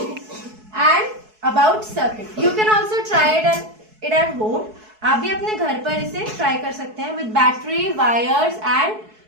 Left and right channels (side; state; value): left; late; 4.6 ms